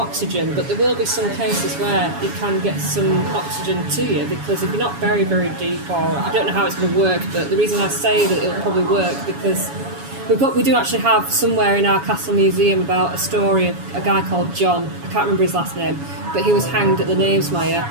but there will be some cases where you can get some oxygen to you, because if you're not very, very deep, or I don't know how it's going to work, but the reason I say that it'll probably work because we do actually have somewhere in our castle museum about a story of a guy called John. I can't remember his last name, but he was hanged at the Knavesmire.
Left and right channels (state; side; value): late; left; 7.2 ms